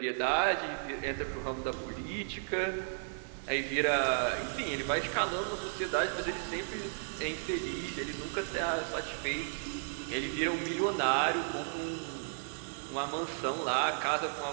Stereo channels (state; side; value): silent; left; digital silence